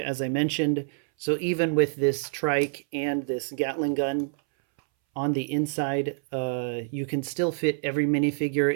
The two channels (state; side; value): silent; left; 60 dB below the other